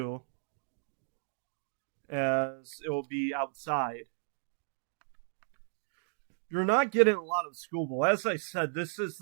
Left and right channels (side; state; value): left; silent; digital silence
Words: as it will be outside. You're not getting a lot of schoolball. As I said, this is